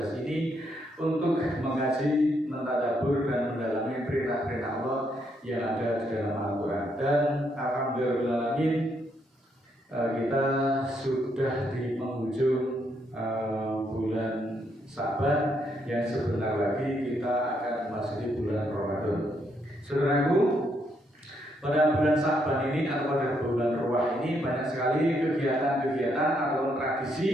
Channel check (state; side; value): normal; both; correlation 0.75